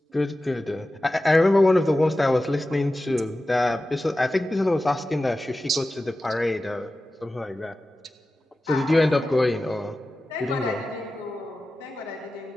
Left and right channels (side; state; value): both; normal; correlation 0.94